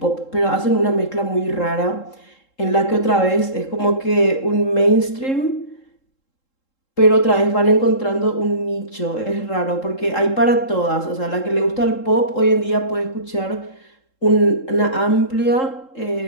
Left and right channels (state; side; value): late; right; 3.7 ms